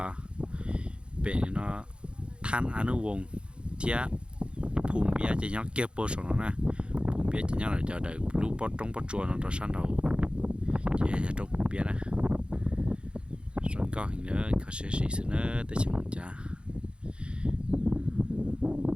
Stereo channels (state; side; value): late; left; 0.055 ms